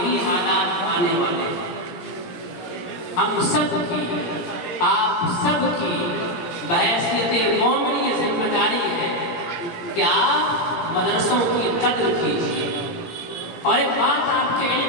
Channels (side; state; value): right; late; 17 ms